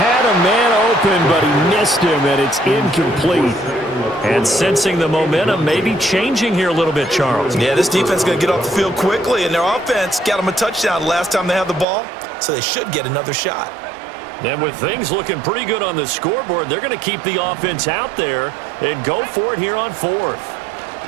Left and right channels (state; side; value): drops out; left; at 11.9 s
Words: a man open, but he missed him, and it's incomplete. And sensing the momentum maybe changing here a little bit, Charles. Yeah, this defense is going to get off the field quickly, and their offense got them a touchdown last time they had the ball, so they should get another shot. And with things looking pretty good on the scoreboard, they're going to keep the offense out there and go for it here on 4th.